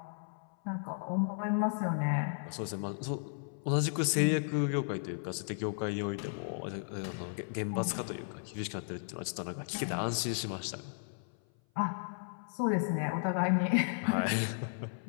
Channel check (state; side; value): silent; right; 55 dB below the other